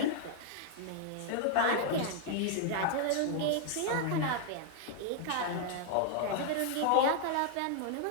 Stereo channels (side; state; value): both; different; correlation 0.00